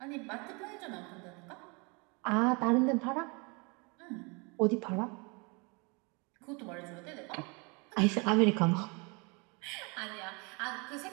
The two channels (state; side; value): quieter; left; 30.4 dB